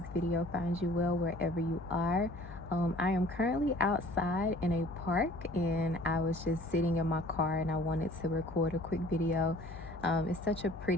video finds you well wherever you are. I am currently outside in a park and I was just sitting in my car and I wanted to record a quick video. It's such a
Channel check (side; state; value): left; noise; hum, 14 dB below the sound